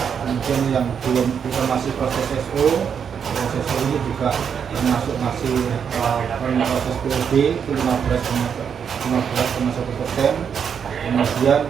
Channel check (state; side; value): quieter; left; 7.3 dB